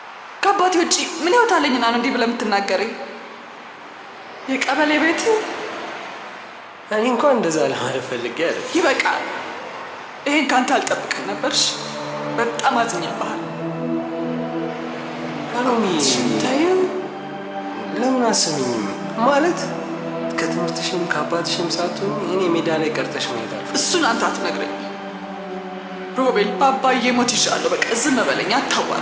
ከአባቴ ውጭ ምን ህይወት አለኝና ነው እንዲህ ብለህ የምትናገረኝ? የቀበሌ ቤት እኔ እንኳን እንደዛ ለማለት ፈልጌ አይደል። ይበቃል። ይሄን ካንተ አልጠብቅም ነበርሽ። በጣም አዝኜብሃል። አሎሚ ታየው ለምን አሰሚኝም? ማለት ከትምህርትሽም ከአባትሽም ሳትሆኝ እኔ ሜዳ ላይ ቀርተሽ ማየት አልፈልግም። እሱን አንተ አትነግረኝ ሮቤል። በአባዬ ሞት ይሻለሁ። በቃ ዝም በለኝ፣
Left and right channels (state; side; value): identical; both; correlation 1.00